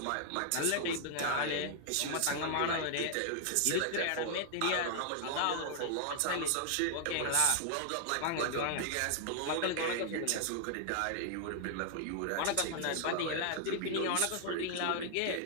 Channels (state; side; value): different; both; correlation 0.00